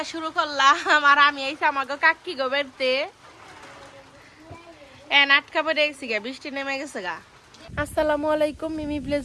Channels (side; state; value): both; identical; correlation 1.00